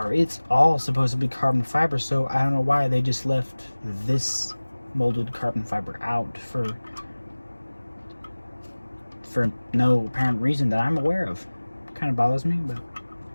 it's all supposed to be carbon fiber, so I don't know why they just left this molded carbon fiber out for no apparent reason that I'm aware of. Kind of bothers me, but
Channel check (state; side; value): inverted; both; correlation -1.00